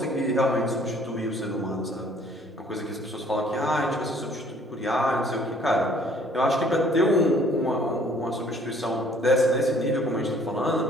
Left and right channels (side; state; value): both; normal; correlation 0.58